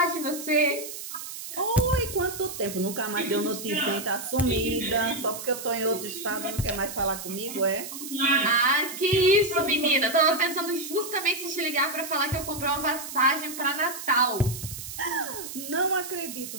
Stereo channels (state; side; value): noise; right; hiss, 9 dB below the sound